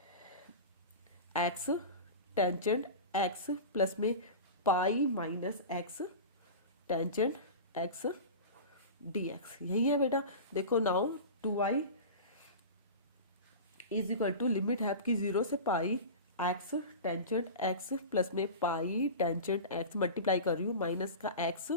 एक्स टेंजेंट एक्स प्लस में pi minus x tangent x D x. यही है बेटा। देखो now 2i is equal to limit है आपकी 0 से pi x tangent x plus में पाई टेंजेंट एक्स, मल्टीप्लाई कर रही हूँ, माइनस का एक्स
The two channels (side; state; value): both; inverted; correlation -0.30